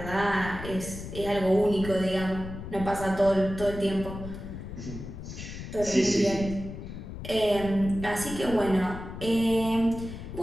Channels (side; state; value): left; noise; rumble, 9 dB below the sound